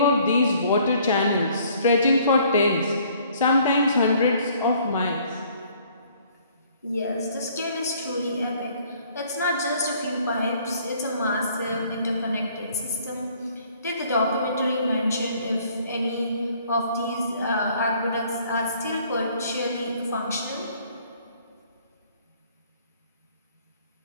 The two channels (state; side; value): inverted; both; correlation -0.59